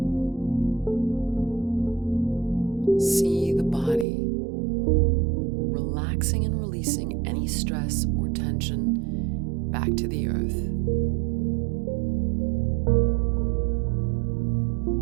See the body relaxing and releasing any stress or tension back to the earth.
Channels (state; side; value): drops out; left; at 4.0 s